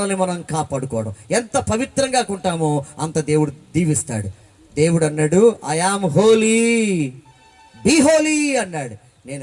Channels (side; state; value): both; identical; correlation 1.00